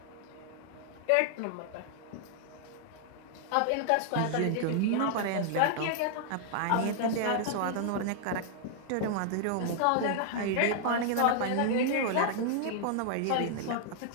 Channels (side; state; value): both; different; correlation -0.01